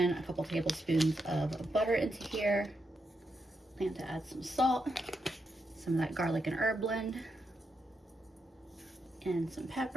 a couple tablespoons of butter into here. Plan to add some salt, some of that garlic and herb blend, and some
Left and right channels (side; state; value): both; normal; correlation 0.83